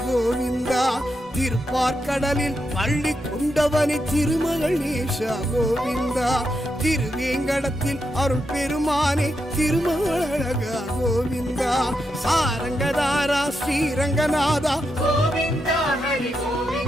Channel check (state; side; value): normal; both; correlation 0.84